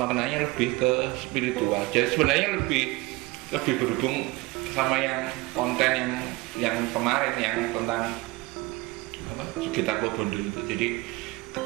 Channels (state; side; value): quieter; left; 21.8 dB